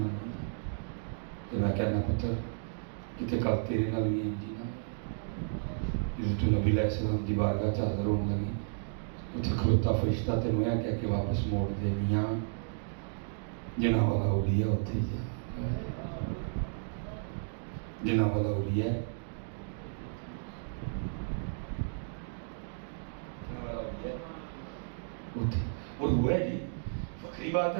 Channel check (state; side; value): silent; left; digital silence